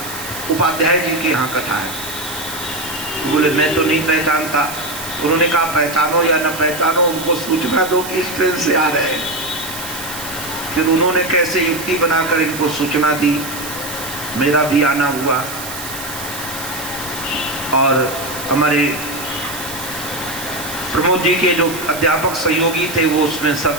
उपाध्याय जी के यहाँ कथा है। बोले मैं तो नहीं पहचानता। उन्होंने कहा पहचानो या न पहचानो, उनको सूचना दो कि इस ट्रेन से आ रहे हैं। फिर उन्होंने कैसे युक्ति बनाकर इनको सूचना दी, मेरा भी आना हुआ। और हमारे प्रमोद जी के जो अध्यापक सहयोगी थे वो उसमें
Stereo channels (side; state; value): right; noise; hiss, 9 dB below the sound